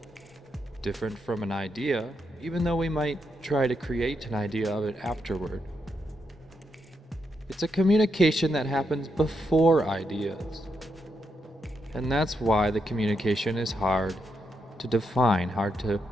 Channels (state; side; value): normal; both; correlation 0.82